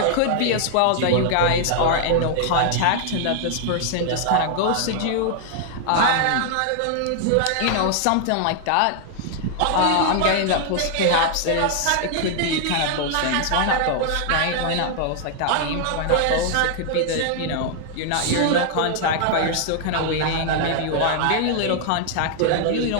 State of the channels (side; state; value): both; different; correlation 0.00